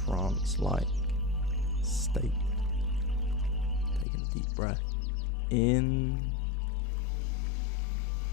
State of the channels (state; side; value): drops out; right; at 4.0 s